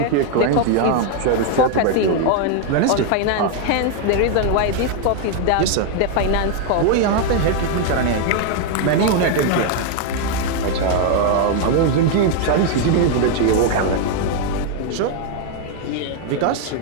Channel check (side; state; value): both; different; correlation 0.01